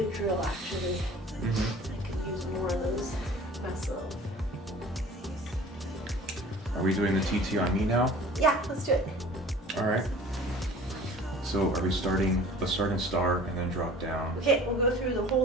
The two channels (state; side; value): normal; both; correlation 0.45